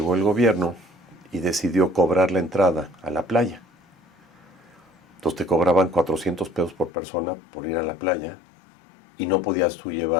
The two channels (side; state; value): right; drops out; at 6.9 s